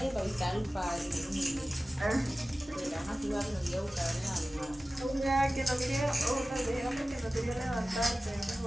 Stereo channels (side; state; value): both; normal; correlation 0.96